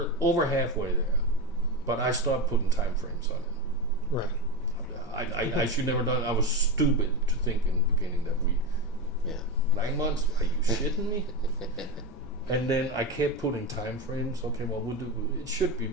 over halfway there. But I stopped putting time frames on it. Right. I should never done it. I was stupid to think in the beginning that 9 months? Are you shitting me? And then I kept putting time frames. Okay, well, we'll do it. Should be,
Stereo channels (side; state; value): both; normal; correlation 0.16